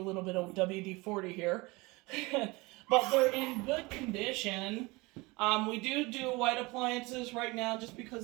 little bit of WD-40 here. But they're in good condition. We do white appliances right now just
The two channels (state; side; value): quieter; left; 24.0 dB